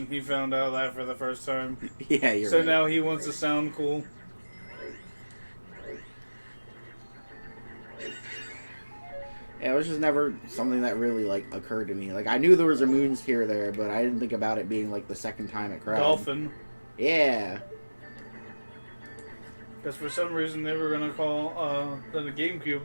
he found out that for the first time. Yeah, you're so right. now he wants to sound cool. Yeah, it was just never something that really, like, occurred to me. Like, I knew there was a moon sphere there, but I didn't think about it being, like, the second time it cried. Dolphin. Yeah. Because for some reason they were going to call the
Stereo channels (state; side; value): inverted; both; correlation -1.00